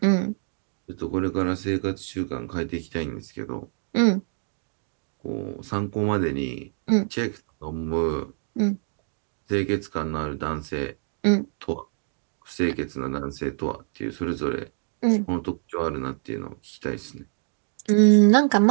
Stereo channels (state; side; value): silent; left; 61 dB below the other